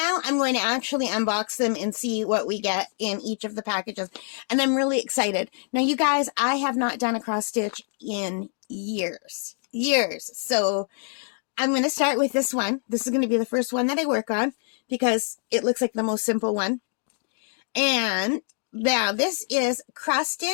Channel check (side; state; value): right; silent; 61 dB below the other